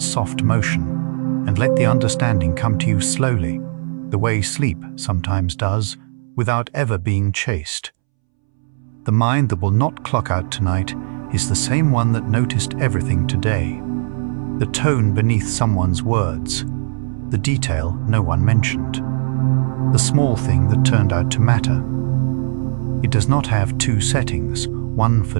soft motion, and let the understanding come to you slowly, the way sleep sometimes does, without ever being chased. The mind that will not clock out tonight is the same one that noticed everything today. The tone beneath someone's words, the detail no one mentioned, the small thing that turned out to matter. It does not have two settings, one for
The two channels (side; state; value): left; silent; 67 dB below the other